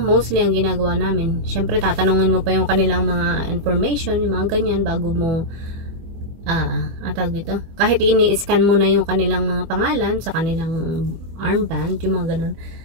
mostly ang ginagawa namin. Syempre, tatanungin mo pa yung kanilang mga information, yung mga ganyan, bago mo dito. Kahit ini-scan mo na yung kanilang mga pangalan sa kanilang armband, yung mga ganun.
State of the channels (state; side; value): late; left; 24 ms